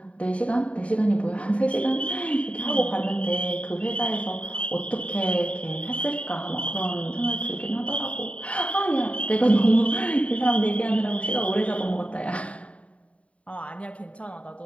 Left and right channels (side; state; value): right; late; 0.065 ms